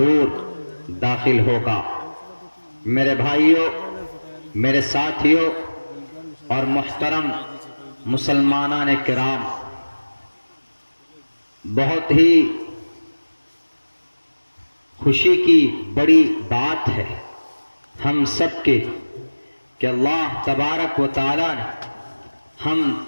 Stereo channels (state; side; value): inverted; both; correlation -1.00